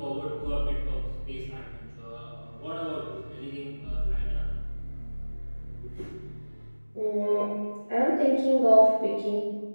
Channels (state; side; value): inverted; both; correlation -1.00